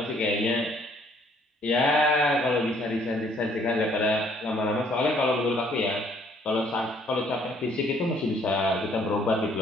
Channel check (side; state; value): both; normal; correlation 0.63